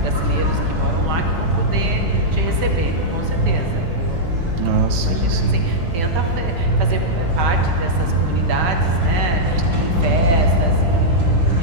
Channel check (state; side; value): late; left; 5.8 ms